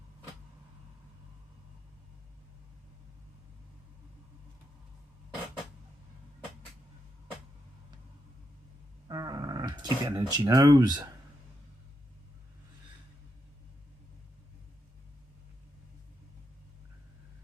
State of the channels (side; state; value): both; normal; correlation 0.83